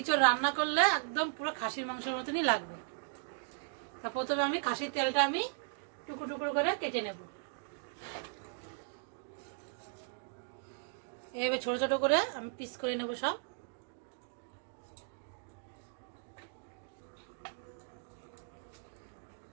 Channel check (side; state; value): left; silent; digital silence